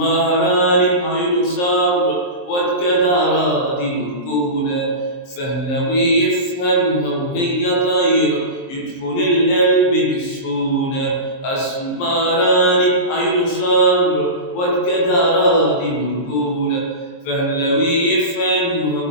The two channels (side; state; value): right; late; 23 ms